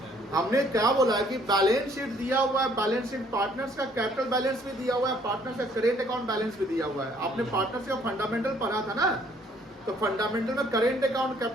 हमने क्या बोला है कि बैलेंस शीट दिया हुआ है, बैलेंस शीट पार्टनर्स का कैपिटल बैलेंस भी दिया हुआ है, पार्टनर्स का करेंट अकाउंट बैलेंस भी दिया हुआ है। आपने पार्टनर्स का फंडामेंटल पढ़ा था ना, तो फंडामेंटल में करेंट अकाउंट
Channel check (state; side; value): normal; both; correlation 0.62